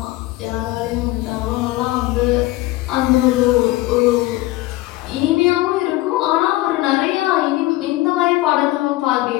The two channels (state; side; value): quieter; right; 18.3 dB